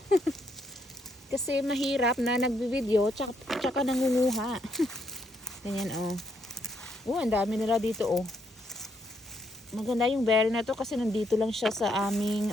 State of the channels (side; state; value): both; normal; correlation 0.75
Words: Kasi mahirap na nagbi-video tsaka nangunguha. Ganyan o. Ang dami nila dito o. Maganda yung berry na to kasi nandito lang siya sa